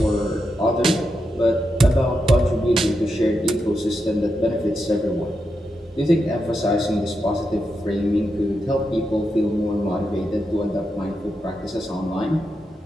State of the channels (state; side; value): normal; both; correlation 0.86